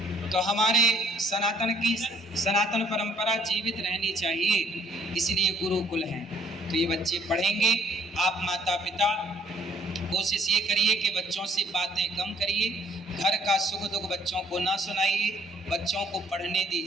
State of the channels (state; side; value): normal; both; correlation 0.62